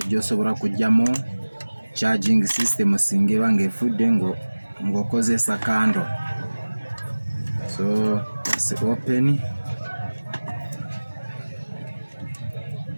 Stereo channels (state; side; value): inverted; both; correlation -1.00